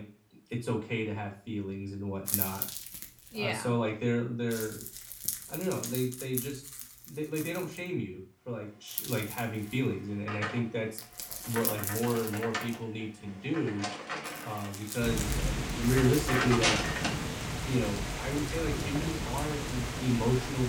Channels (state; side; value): identical; both; correlation 1.00